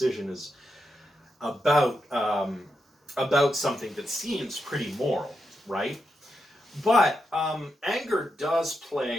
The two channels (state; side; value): normal; both; correlation 0.85